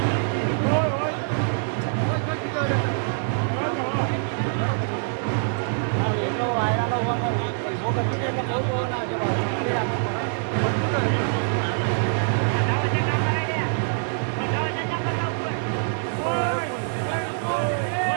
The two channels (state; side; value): silent; left; digital silence